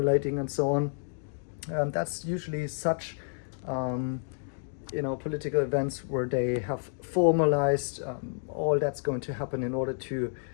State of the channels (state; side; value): silent; right; digital silence